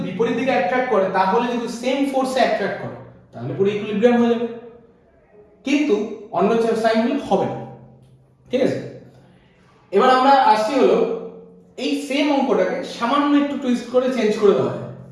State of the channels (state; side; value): identical; both; correlation 1.00